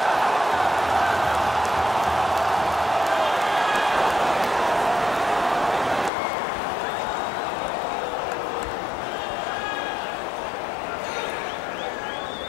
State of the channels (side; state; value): right; drops out; at 6.1 s